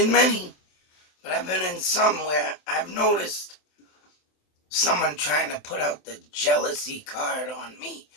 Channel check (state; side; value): late; right; 27 ms